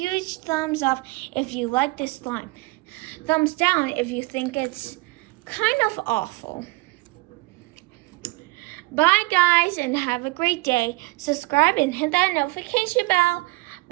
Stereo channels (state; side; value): quieter; left; 23.8 dB